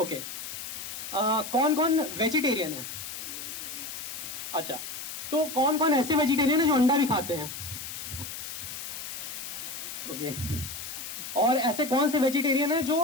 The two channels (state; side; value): noise; left; hiss, 8 dB below the sound